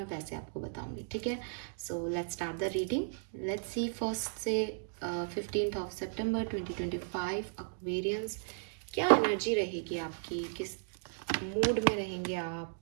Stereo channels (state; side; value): silent; left; digital silence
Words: वैसे आपको बताऊंगी, ठीक है। So let's start the reading. Let's see first से 15th ऑफ सितंबर 2025 एक्वेरियंस, क्या एनर्जी रहेगी आपकी, किस मूड में रहेंगे आप,